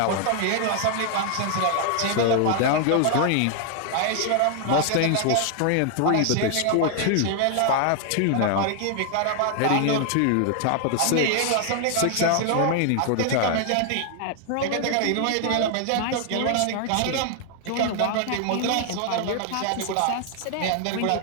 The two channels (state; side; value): different; both; correlation 0.00